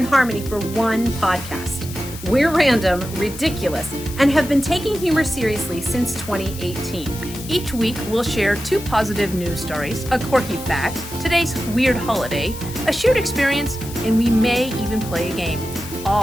harmony for one podcast. We're random, ridiculous, and have been taking humor seriously since 2018. Each week, we'll share two positive news stories, a quirky fact, today's weird holiday, a shared experience, and we may even play a game,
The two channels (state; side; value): noise; left; hiss, 14 dB below the sound